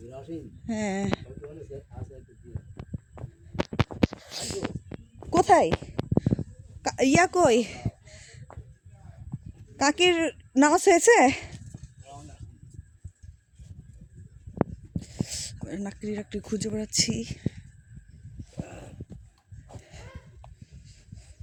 হ্যাঁ, কোথায় ইয়া কই? কাকির নামাজ হয়েছে? লাকড়ি খুঁজে বেড়াচ্ছি।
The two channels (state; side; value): identical; both; correlation 1.00